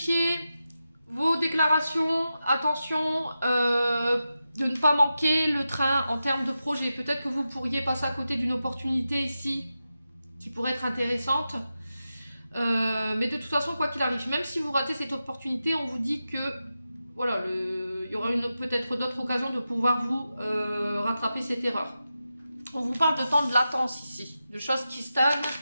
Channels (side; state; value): both; inverted; correlation -0.91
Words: vos déclarations. Attention de ne pas manquer le train en termes de projet. Peut-être que vous pourriez passer à côté d'une opportunité ici qui pourrait être intéressante. Mais de toute façon, quoi qu'il arrive, même si vous ratez cette opportunité, on vous dit que voilà, il y aura peut-être d'autres occasions de pouvoir vous rattraper cette erreur. On vous parle de temps de latence ici, de choses qui stagnent.